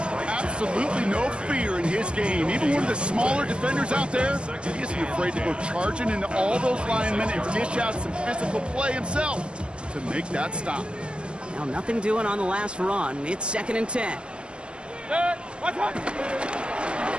Absolutely no fear in his game. Even one of the smaller defenders out there, he isn't afraid to go charging into all those linemen and dish out some physical play himself to make that stop. Now nothing doing on the last run. It's 2nd and 10. Right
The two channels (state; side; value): late; left; 0.050 ms